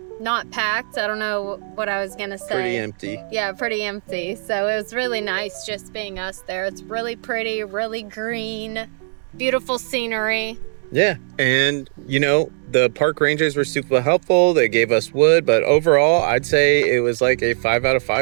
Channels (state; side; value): silent; left; 66 dB below the other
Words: packed. I don't know what I was gonna say. Pretty empty. Yeah, pretty empty. So it was really nice just being us there. It's really pretty, really green. Beautiful scenery. Yeah, and the park rangers were super helpful. They gave us wood, but overall I'd say it was like a 5 out of